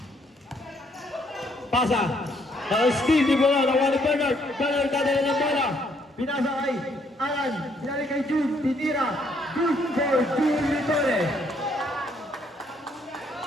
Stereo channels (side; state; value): both; normal; correlation 0.69